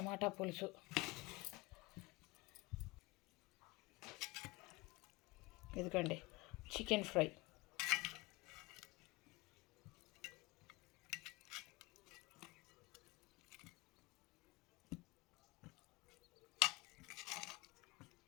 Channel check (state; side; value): quieter; right; 23.6 dB